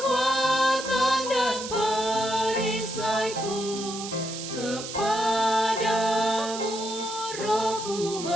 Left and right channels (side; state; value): right; noise; hiss, 9 dB below the sound